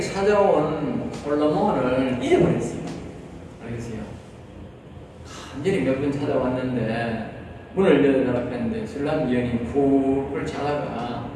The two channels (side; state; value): both; identical; correlation 1.00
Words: 찾아온 솔로몬을 잃어버렸어요. 알겠어요? 간절히 몇 번 찾아왔는데 문을 열어달라고 했는데 술람 여인이 푹을 자다가